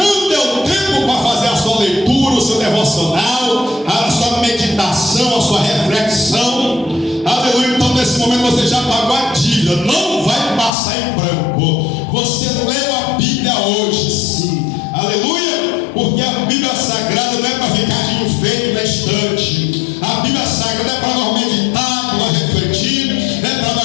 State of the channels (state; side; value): drops out; right; at 10.7 s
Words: deu tempo para fazer a sua leitura, o seu devocional, a sua meditação, a sua reflexão. Aleluia. Então nesse momento você já pagou a dívida, não vai passar em branco. Você leu a Bíblia hoje, sim. Aleluia. Porque a Bíblia Sagrada não é para ficar de enfeite na estante. A Bíblia Sagrada é para nós meditar, para nós refletir, é para